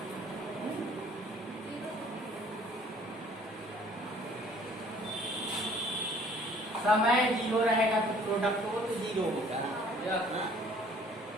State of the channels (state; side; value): normal; both; correlation 0.56